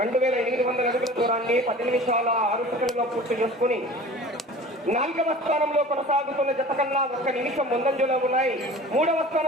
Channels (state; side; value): normal; both; correlation 0.41